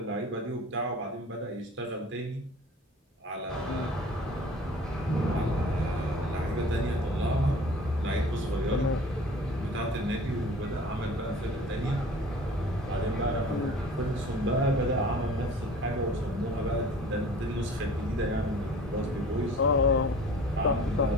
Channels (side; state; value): both; normal; correlation 0.45